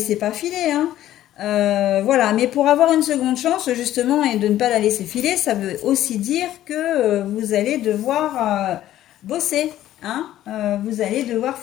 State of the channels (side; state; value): right; quieter; 13.2 dB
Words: pas filer, hein. Voilà, mais pour avoir une seconde chance, justement, et de ne pas la laisser filer, ça veut aussi dire que vous allez devoir bosser, hein. Vous allez devoir